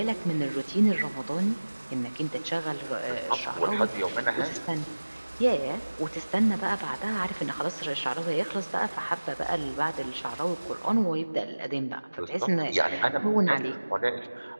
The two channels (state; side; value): inverted; both; correlation -1.00